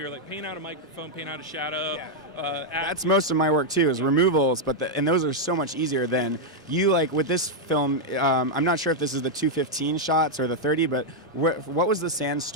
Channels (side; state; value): both; normal; correlation -0.01